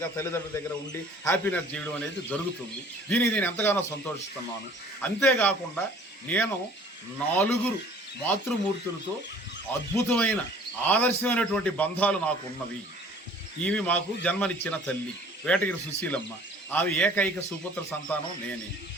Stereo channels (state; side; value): normal; both; correlation 0.51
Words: తల్లిదండ్రుల దగ్గర ఉండి హ్యాపీనెస్ చేయడం అనేది జరుగుతుంది. దీనికి నేను ఎంతగానో సంతోషిస్తున్నాను. అంతేకాకుండా నేను 4 మాతృమూర్తులతో అద్భుతమైన ఆదర్శమైనటువంటి బంధాలు నాకు ఉన్నవి. ఈమె మాకు జన్మనిచ్చిన తల్లి వేటగిరి సుశీలమ్మ. ఆమె ఏకైక సుపుత్ర సంతానం నేనే.